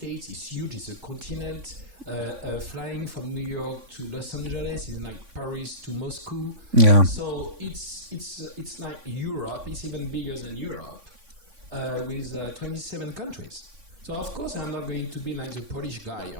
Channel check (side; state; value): left; late; 3.5 ms